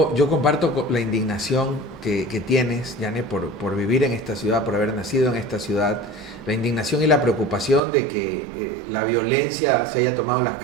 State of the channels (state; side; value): drops out; left; at 7.8 s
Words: comparto la indignación que tienes, Yane, por vivir en esta ciudad, por haber nacido en esta ciudad, la indignación y la preocupación de que la violencia se haya tomado en las